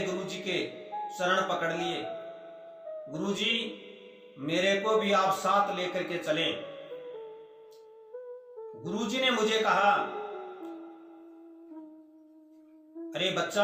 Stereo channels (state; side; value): identical; both; correlation 1.00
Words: गुरुजी के शरण पकड़ लिए। गुरुजी, मेरे को भी आप साथ लेकर के चलें। गुरुजी ने मुझे कहा, अरे